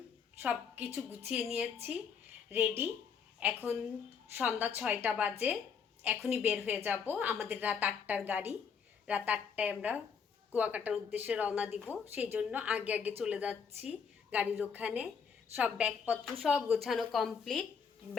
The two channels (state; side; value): quieter; right; 6.4 dB